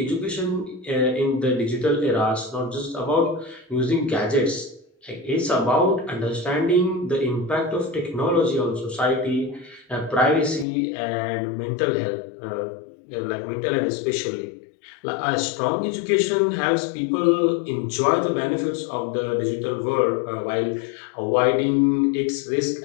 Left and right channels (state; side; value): drops out; right; at 10.7 s